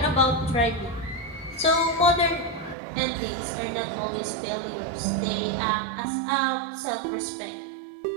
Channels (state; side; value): drops out; left; at 2.8 s